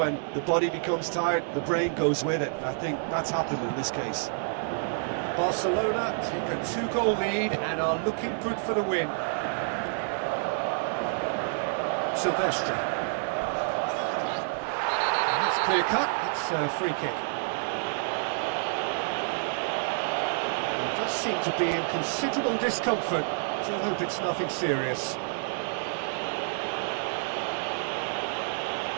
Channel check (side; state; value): left; silent; digital silence